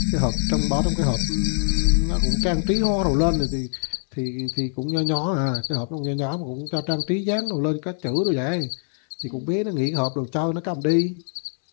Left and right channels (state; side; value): silent; right; 58 dB below the other